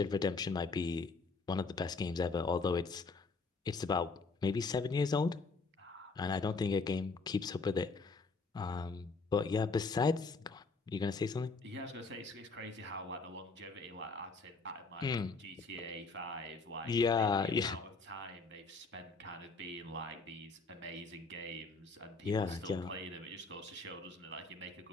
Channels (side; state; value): right; quieter; 4.1 dB